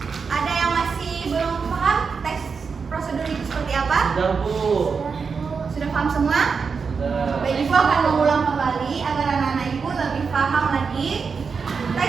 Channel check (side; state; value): left; quieter; 5.4 dB